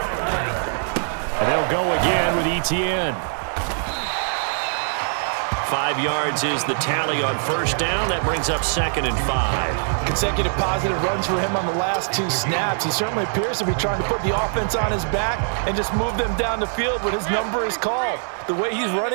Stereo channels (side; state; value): left; silent; 61 dB below the other